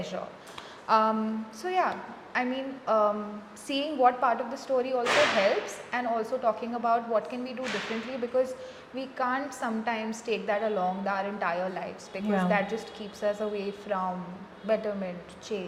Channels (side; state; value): both; identical; correlation 1.00